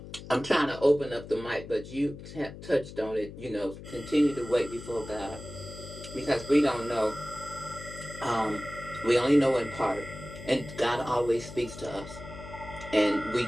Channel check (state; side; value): noise; left; hum, 13 dB below the sound